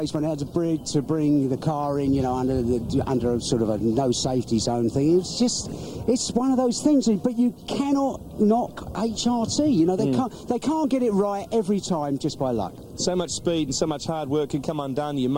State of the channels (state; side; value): identical; both; correlation 1.00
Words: when he had to bring the car in, under a sort of a no safety zone thing. It's one of those things, but you cannot knock HRT. They can't get it right every time just by luck. So much speed and so much hard work can come undone. You